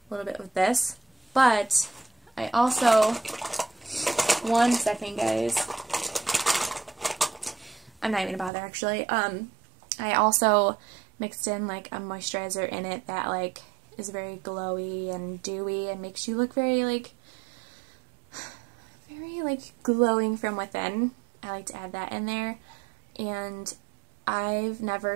a little bit with this. But I also, one second guys, I'm not even gonna bother actually. I also mixed in like a moisturizer in it that like is very glowy and dewy and makes you look very like glowing from within. I like to add that in there, and I've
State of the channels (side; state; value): left; drops out; at 8.5 s